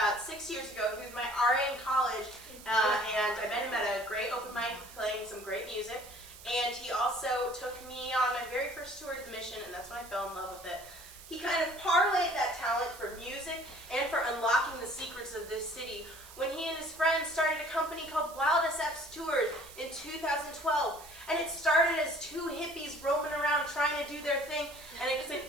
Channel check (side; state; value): right; noise; hiss, 18 dB below the sound